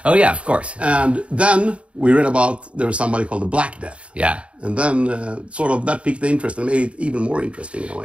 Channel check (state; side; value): late; left; 0.061 ms